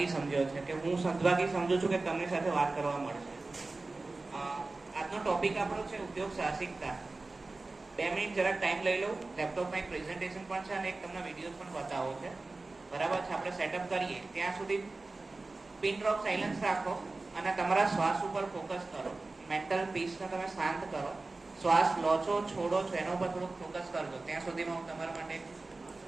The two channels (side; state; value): left; quieter; 3.4 dB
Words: સમજ્યો છે, કે હું સદભાગી સમજુ છું કે તમારી સાથે વાત કરવા મળશે. આજનો ટોપિક આપણો છે ઉદ્યોગ સાહસિકતા. 2 મિનિટ જરાક ટાઈમ લઈ લઉં. લેપટોપમાં એક પ્રેઝન્ટેશન પણ છે અને એક તમને વિડીયો પણ બતાવો છે. બરાબર છે? આપણે સેટઅપ કરીએ ત્યાં સુધી પિન ડ્રોપ સાયલન્સ રાખો અને તમારા શ્વાસ ઉપર ફોકસ કરો. મેન્ટલ પીસને તમે શાંત કરો. શ્વાસ લો છો, છોડો છો, એના ઉપર થોડુંક ફોકસ કરજો. ત્યાં સુધીમાં હું તમારા માટે